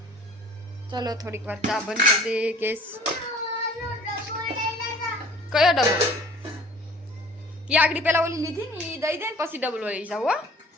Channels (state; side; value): normal; both; correlation 0.49